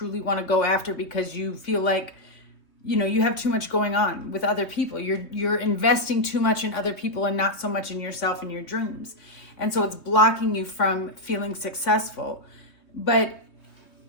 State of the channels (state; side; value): late; right; 3.2 ms